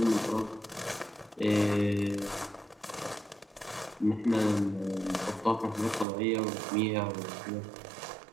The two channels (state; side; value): drops out; left; at 6.1 s